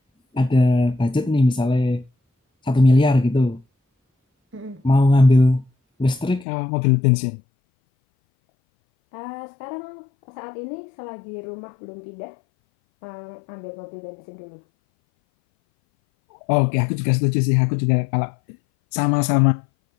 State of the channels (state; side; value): drops out; right; at 6.5 s